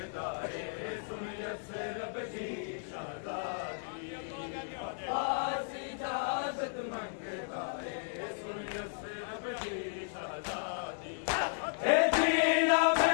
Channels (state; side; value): silent; right; digital silence